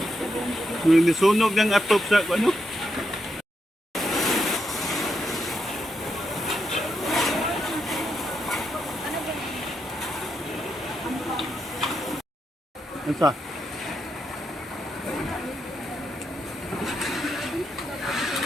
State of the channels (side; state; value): both; normal; correlation 0.82